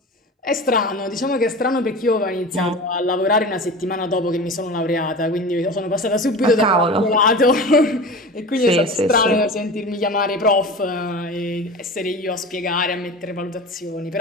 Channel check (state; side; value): normal; both; correlation 0.33